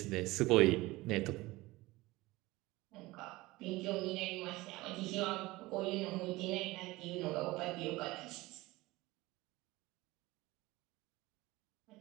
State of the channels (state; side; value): quieter; left; 20.1 dB